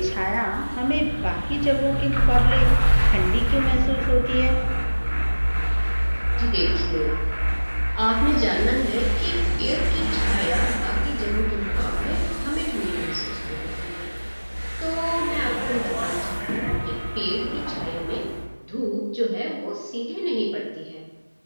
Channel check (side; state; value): both; inverted; correlation -1.00